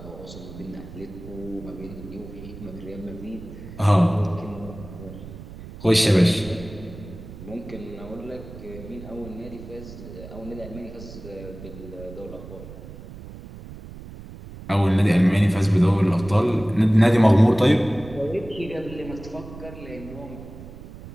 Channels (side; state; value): right; noise; rumble, 14 dB below the sound